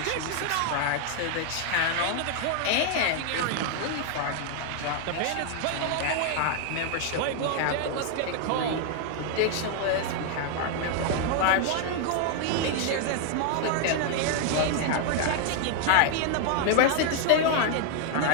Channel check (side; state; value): both; different; correlation 0.00